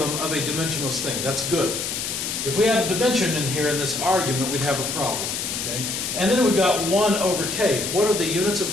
of a dimensionless thing. That's good. If we had a dimension in here in this argument, we'd have a problem. Okay? And then we've got 1 over k. What are the units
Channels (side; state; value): left; noise; hiss, 3 dB below the sound